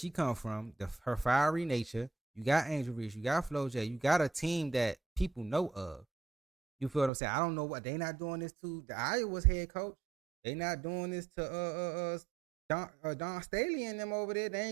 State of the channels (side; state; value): left; drops out; at 7.1 s